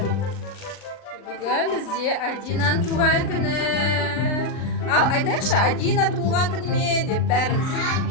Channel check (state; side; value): late; right; 39 ms